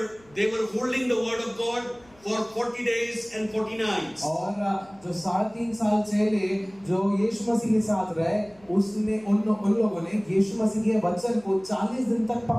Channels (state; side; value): noise; left; hum, 29 dB below the sound